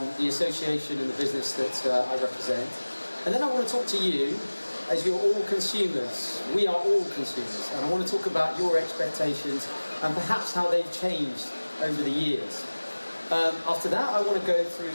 association and the business that I represent. And then I want to talk to you, as you're all consumers. We are all consumers, and I want to talk about your expectations and perhaps how they've changed over the years. After that, I want to go through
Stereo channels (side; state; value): both; inverted; correlation -1.00